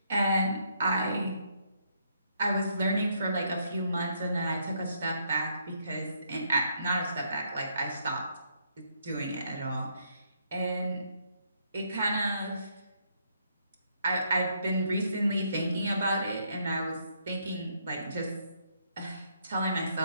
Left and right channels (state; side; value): inverted; both; correlation -0.72